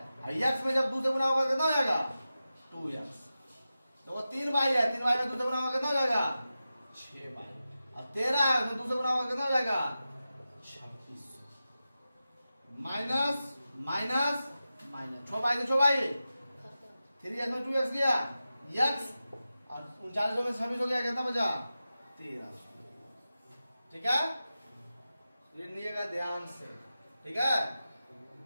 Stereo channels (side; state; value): both; inverted; correlation -0.93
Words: x में जब 2 से गुना होगा कितना हो जाएगा? 2x। तो वो 3 बाई है, 3 बाई में 2 से गुना होगा कितना हो जाएगा? 6 बाई। और 13 है, उसमें 2 से गुना होगा कितना हो जाएगा? 2600। माइनस माइनस माइनस 6 बाई से 6 बाई, 3x में 2x गया, x और 3900 में 26 हो गया, कितना बचा? 1300। ठीक है, लिखिएगा ध्यान से। ठीक है